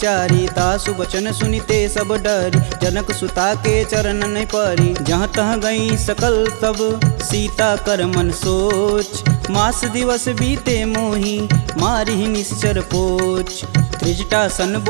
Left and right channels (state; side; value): silent; left; digital silence